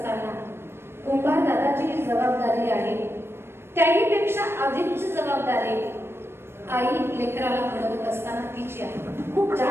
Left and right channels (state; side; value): late; left; 0.12 ms